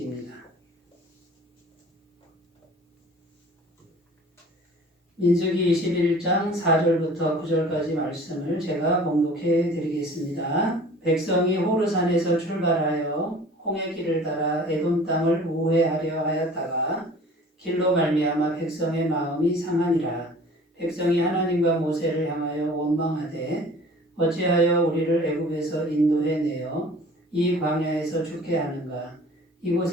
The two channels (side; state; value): both; normal; correlation 0.46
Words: 민수기 21장 4절부터 9절까지 말씀을 제가 봉독해 드리겠습니다. 백성이 호르산에서 출발하여 홍해 길을 따라 에돔 땅을 우회하려 하였다가 길로 말미암아 백성의 마음이 상하니라. 백성이 하나님과 모세를 향하여 원망하되 어찌하여 우리를 애굽에서 인도해 내어 이 광야에서 죽게 하는가.